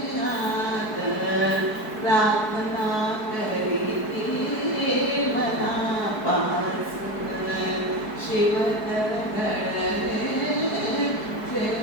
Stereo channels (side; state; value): right; late; 4.7 ms